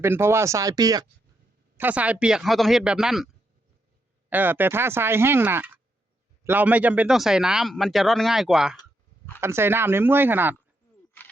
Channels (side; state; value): both; normal; correlation 0.80